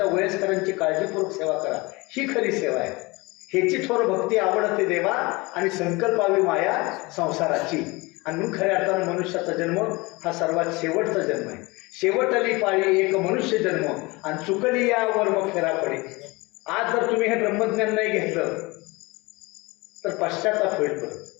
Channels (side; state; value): right; quieter; 24.2 dB